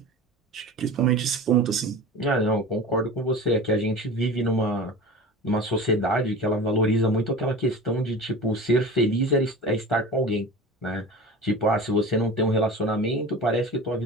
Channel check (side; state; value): both; normal; correlation 0.34